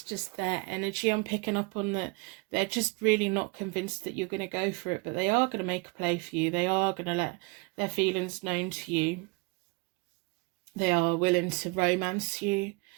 just their energy I'm picking up on, that they're just really not convinced that you're going to go for it, but they are going to make a play for you. They are going to let their feelings known to you. They are willing to romance you,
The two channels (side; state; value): left; quieter; 28.5 dB